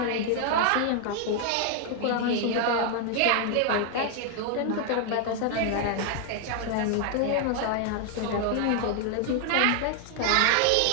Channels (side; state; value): both; different; correlation 0.00